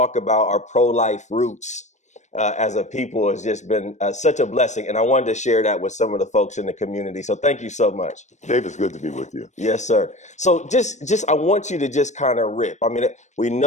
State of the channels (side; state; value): right; late; 0.34 ms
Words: about our pro-life roots as a people has just been such a blessing, and I wanted to share that with some of the folks in the community. So thank you so much. Dave, it's good to be with you. Yes, sir. So just I want you to just kind of rip. I mean, we